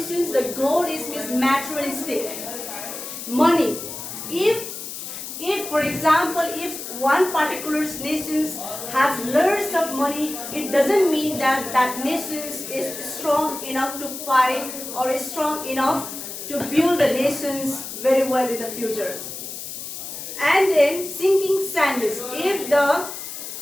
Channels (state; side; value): noise; left; hiss, 9 dB below the sound